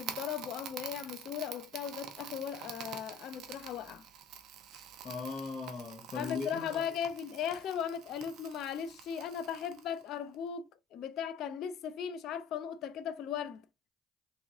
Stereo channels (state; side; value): quieter; right; 5.9 dB